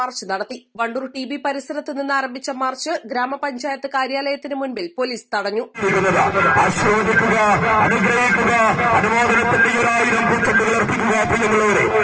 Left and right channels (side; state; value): both; identical; correlation 1.00